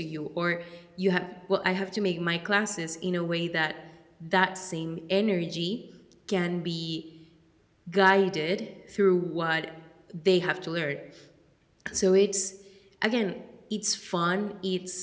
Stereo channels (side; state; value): both; identical; correlation 1.00